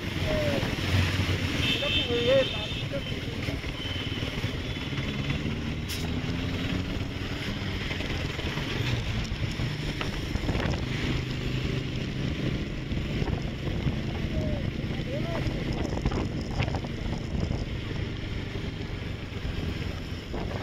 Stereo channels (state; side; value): identical; both; correlation 1.00